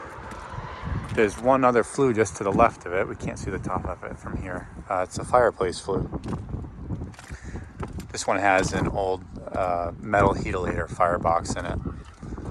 there's one other flue just to the left of it. We can't see the top of it from here. It's a Fireplace flue. This one has an old metal heatilator firebox in it,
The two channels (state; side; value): identical; both; correlation 1.00